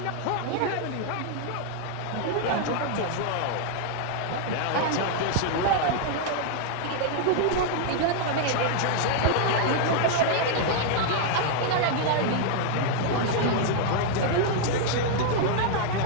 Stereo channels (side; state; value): both; different; correlation 0.00